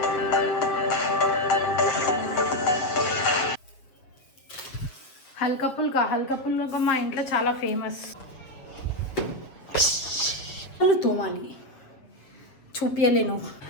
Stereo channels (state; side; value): late; right; 7.7 ms